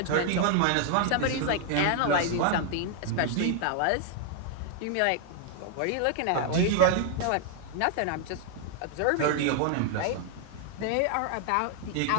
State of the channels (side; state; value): both; different; correlation 0.00